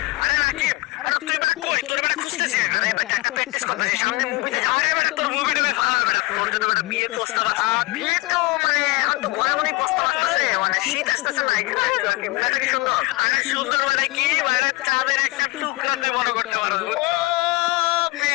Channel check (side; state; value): right; quieter; 21.8 dB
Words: আরে রাকিব, আরে তুই বেটা কই? তোর বেটা খুঁজতেছে। আরে বেটা একটা প্র্যাকটিস করতে সামনে মুভিতে যাও। আরে বেটা তোর মুভি দেবে ফাল বেটা। তোর জন্য বেটা বিয়ে প্রস্তাব বিয়ে তো মানে এখন তো ঘরে মনে প্রস্তাব আসতেছে, মানে শীত আসতেছে না এখানে রাকিব। বেটা কি সুন্দর। আরে সুন্দর মানে কি, মানে চাঁদের একটা টুকরা তুই মনে করতে পারো। ও